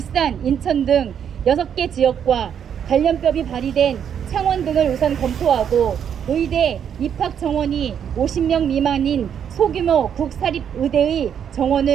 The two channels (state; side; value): quieter; left; 8.4 dB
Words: 인천 등 6개 지역과 관련법이 발의된 창원 등을 우선 검토하고 의대 입학 정원이 50명 미만인 소규모 국사립의대의